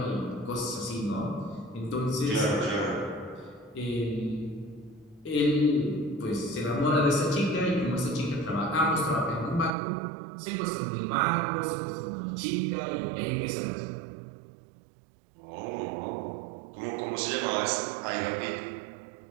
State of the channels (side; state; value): left; drops out; at 9.8 s